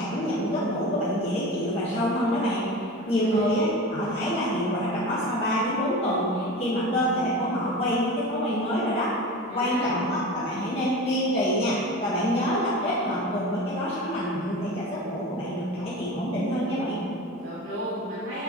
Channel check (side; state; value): both; normal; correlation 0.32